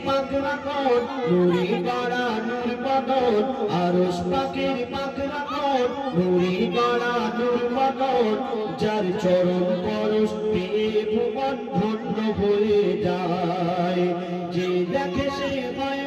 পাকরা কোন নূরে বাড়া নূর বদন, আরশ পাকের পাকরা কোন নূরে বাড়া নূর বদন, যার চরণ পরশ পেয়ে ভুবন ধন্য হয়ে যায়, যে দেখে সে হয়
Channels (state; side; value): identical; both; correlation 1.00